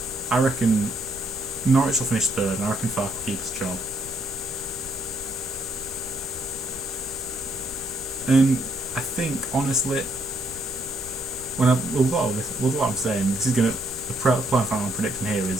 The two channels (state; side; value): normal; both; correlation 0.71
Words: I reckon Norwich will finish third, and I reckon Farke will keep his job. And I think, honestly, with what I'm saying, this is going to, the plan final I'm predicting here